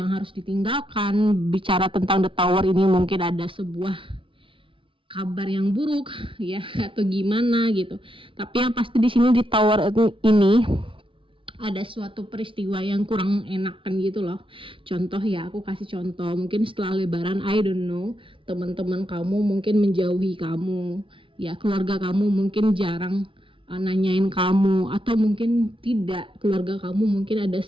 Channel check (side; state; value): left; late; 0.25 ms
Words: harus ditinggalkan. Bicara tentang The Tower ini mungkin ada sebuah kabar yang buruk ya atau gimana gitu. Tapi yang pasti di sini di Tower ini ada suatu peristiwa yang kurang enakan gitu loh. Contoh ya, aku kasih contoh. Mungkin setelah lebaran, I don't know, teman-teman kamu mungkin menjauhi kamu. Ya, keluarga kamu mungkin jarang nanyain kamu, atau mungkin tidak, keluarga kamu mungkin ada